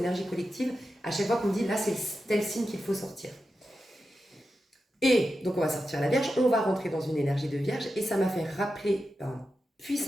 collectives. À chaque fois qu'on dit, là, c'est tel signe qu'il faut sortir. Et donc on va sortir la Vierge, on va rentrer dans une énergie de Vierge, et ça m'a fait rappeler un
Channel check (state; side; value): normal; both; correlation 0.90